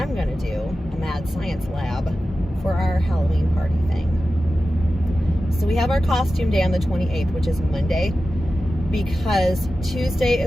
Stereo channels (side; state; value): both; normal; correlation 0.94